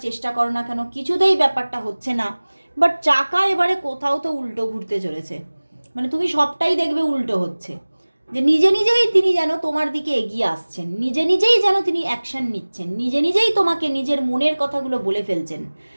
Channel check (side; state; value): both; inverted; correlation -1.00